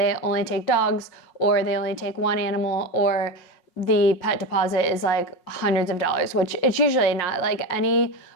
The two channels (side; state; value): right; late; 5.7 ms